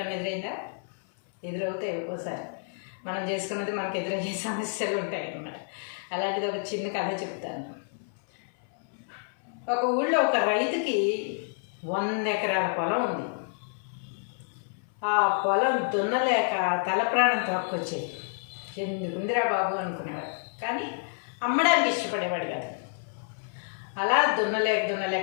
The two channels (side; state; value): right; silent; 59 dB below the other